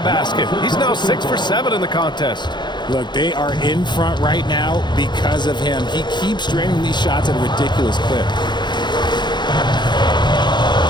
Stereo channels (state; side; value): late; right; 0.21 ms